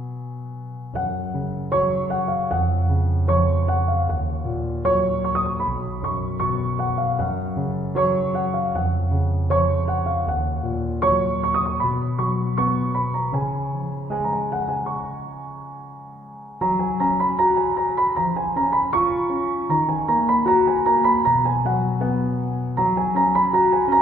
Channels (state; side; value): normal; both; correlation 0.73